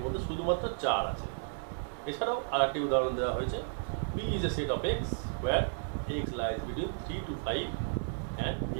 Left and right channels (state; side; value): silent; left; 56 dB below the other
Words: মধ্যে শুধুমাত্র 4 আছে। এছাড়াও আর একটি উদাহরণ দেওয়া হয়েছে, P is a set of x where x lies between 3 to 5 and